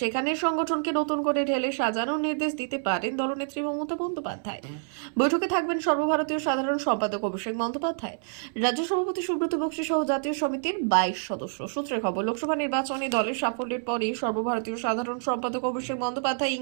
সেখানে সংগঠনকে নতুন করে ঢেলে সাজানোর নির্দেশ দিতে পারেন দলনেত্রী মমতা বন্দ্যোপাধ্যায়। বৈঠকে থাকবেন সর্বভারতীয় সাধারণ সম্পাদক অভিষেক বন্দ্যোপাধ্যায়, রাজ্য সভাপতি সুব্রত বক্সী সহ জাতীয় সমিতির 22 সদস্য। সূত্রের খবর, লোকসভা নির্বাচনে দলের সাফল্যের পরই সর্বভারতীয় সাধারণ সম্পাদক অভিষেক বন্দ্যোপাধ্যায়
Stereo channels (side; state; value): left; silent; 60 dB below the other